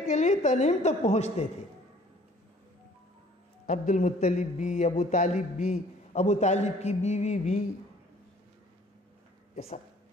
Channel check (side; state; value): both; normal; correlation 0.55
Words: کے لیے تنعیم تک پہنچتے تھے. عبد المطلب بھی، ابو طالب بھی، ابو طالب کی بیوی بھی، یہ سب.